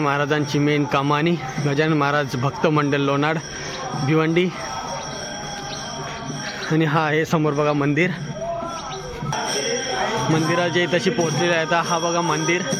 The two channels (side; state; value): both; identical; correlation 1.00